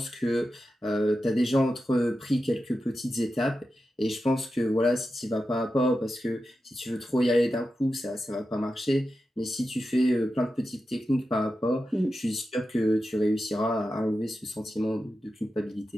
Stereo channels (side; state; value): both; normal; correlation 0.91